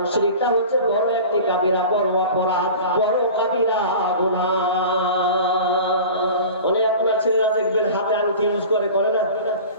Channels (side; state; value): both; inverted; correlation -0.37